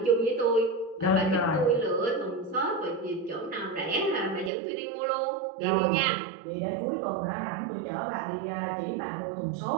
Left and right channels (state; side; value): drops out; left; at 4.5 s